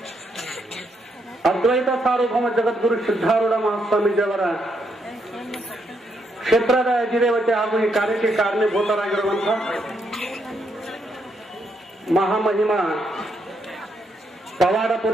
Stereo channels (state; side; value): normal; both; correlation 0.77